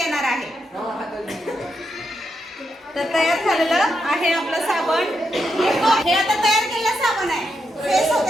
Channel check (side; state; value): both; normal; correlation 0.83